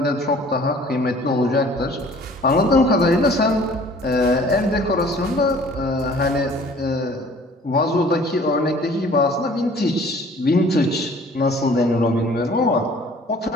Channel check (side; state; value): both; normal; correlation 0.52